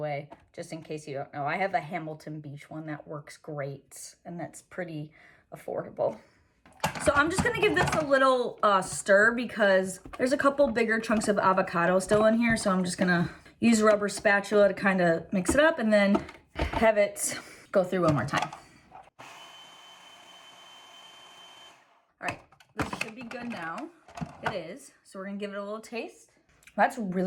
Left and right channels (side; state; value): both; identical; correlation 1.00